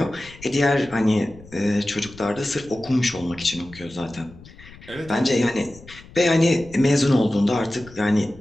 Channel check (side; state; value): left; noise; rumble, 20 dB below the sound